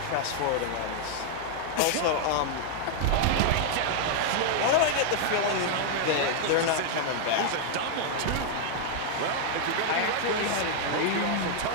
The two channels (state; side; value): different; both; correlation 0.00